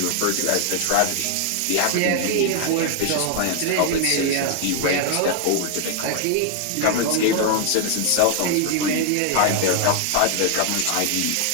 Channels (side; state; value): both; different; correlation 0.00